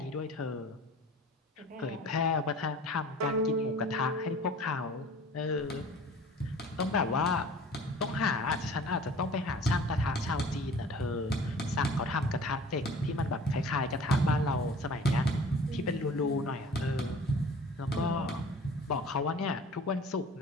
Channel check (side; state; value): both; normal; correlation 0.45